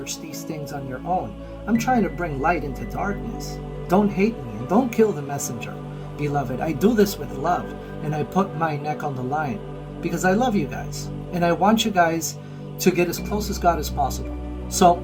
these things on your own. I'm trying to bring light into darkness. Don't hate me and don't kill the messenger, beloved. I do this with love. And I put my neck on the line because I love you guys and I want you guys to get as close as God as possible. So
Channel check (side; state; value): both; identical; correlation 1.00